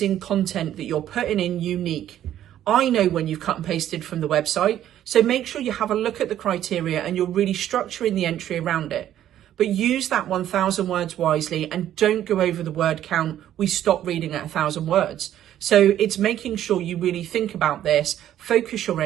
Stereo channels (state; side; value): quieter; left; 11.6 dB